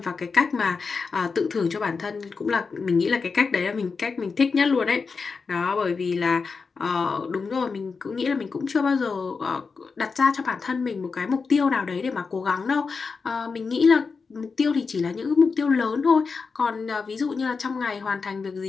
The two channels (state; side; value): quieter; right; 4.9 dB